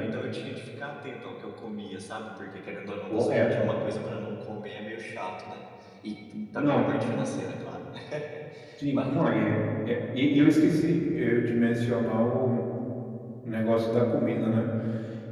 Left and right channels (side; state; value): both; identical; correlation 1.00